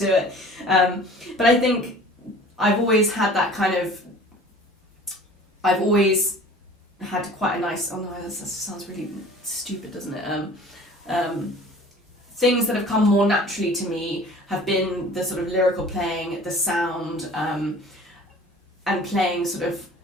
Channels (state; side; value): normal; both; correlation 0.46